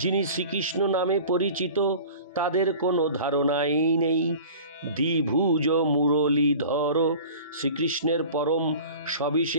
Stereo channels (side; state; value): both; inverted; correlation -0.41